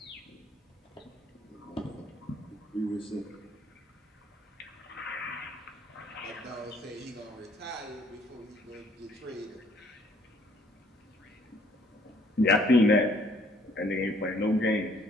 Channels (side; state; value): both; normal; correlation 0.62